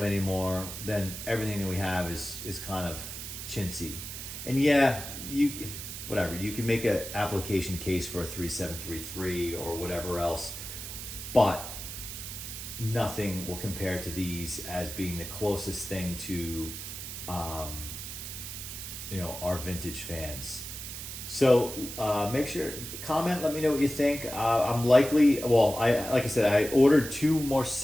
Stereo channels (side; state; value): right; noise; hiss, 8 dB below the sound